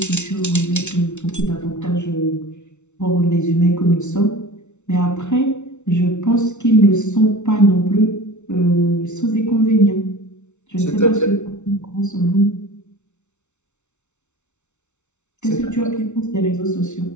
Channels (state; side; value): late; right; 0.82 ms